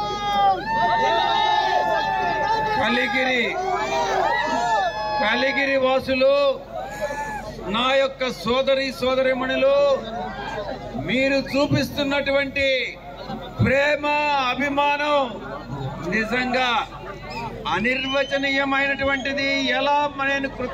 కలిగిరి వాసులు, నా యొక్క సోదరీమణులు, మీరు చూపిస్తున్నటువంటి ప్రేమ అభిమానం నిజంగా అనిర్వచనీయమైనటువంటిది. ఎలా నేను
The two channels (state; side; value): identical; both; correlation 1.00